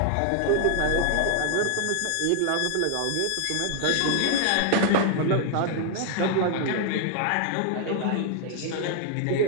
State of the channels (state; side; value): different; both; correlation 0.00